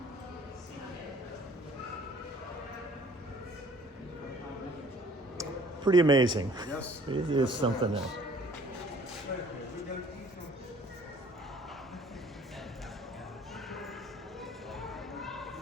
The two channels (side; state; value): both; normal; correlation 0.55